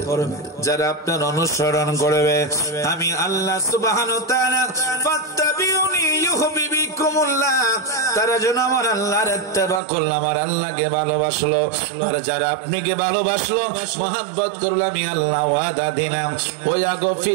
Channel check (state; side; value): drops out; left; at 9.8 s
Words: যারা আপনার অনুসরণ করবে, আমি আল্লাহ সুবহানাহু ওয়া তাআলা ফাত্তাবিউনি ইউহিব্বুকুমুল্লাহ, তারা যেন আমার আল্লাহর ইত্তেবা করলো, আমার আল্লাহকে ভালোবাসলো। আর যারা আপনাকে ভালোবাসলো, মহব্বত করলো, আমি আল্লাহ ওয়াদা দিলাম, ওয়া